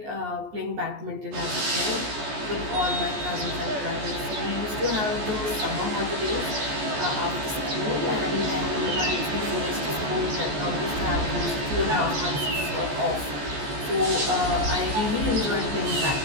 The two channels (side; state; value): left; late; 14 ms